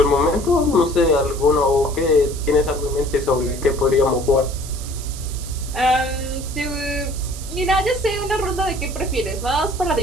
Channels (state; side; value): noise; right; hiss, 13 dB below the sound